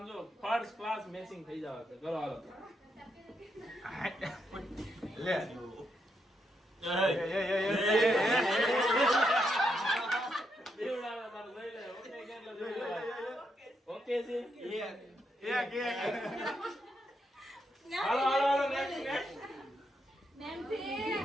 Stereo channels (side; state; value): both; normal; correlation 0.80